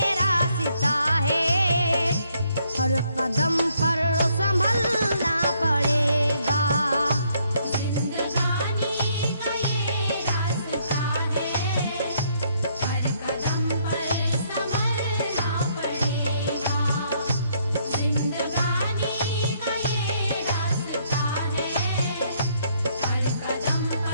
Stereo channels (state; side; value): inverted; both; correlation -0.69